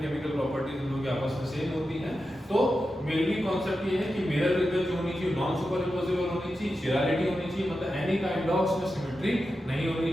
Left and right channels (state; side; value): normal; both; correlation 0.90